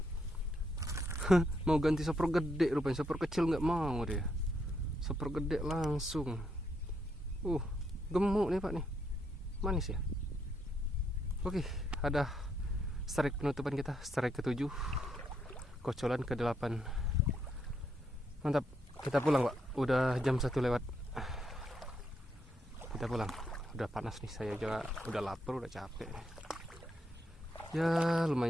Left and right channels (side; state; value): both; normal; correlation 0.77